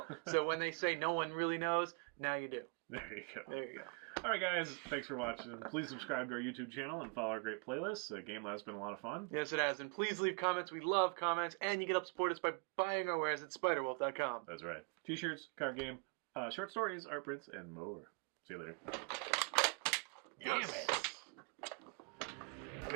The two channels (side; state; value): left; quieter; 35.9 dB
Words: So when they say no one really knows, now you do. There you go. All right, guys. Thanks for watching. Please subscribe to our YouTube channel and follow our great playlists. Game Lab's been a lot of fun. Yes, it has. And please leave comments. We love comments. And you can help support us by buying our wares at spiderwolf.com. That's right. T-shirts, card game, short stories, art prints, and more. See you later. Damn it. I've